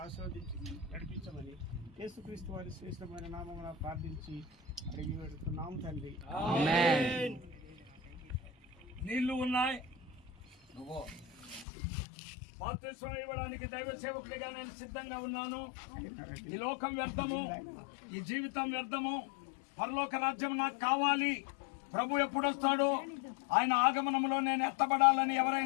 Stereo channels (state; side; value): drops out; right; at 11.7 s